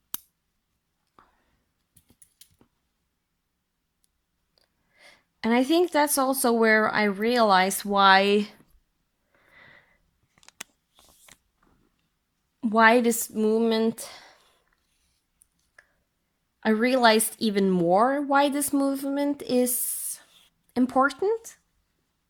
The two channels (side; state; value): both; identical; correlation 1.00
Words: And I think that's also where I realized why this movement, I realized even more why this movement is important.